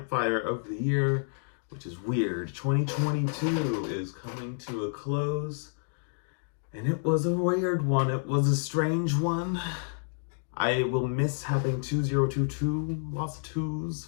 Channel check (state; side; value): silent; right; digital silence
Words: of the year, which is weird. 2022 is coming to a close, and it was a weird one. It was a strange one. I will miss having 2022, lots of twos,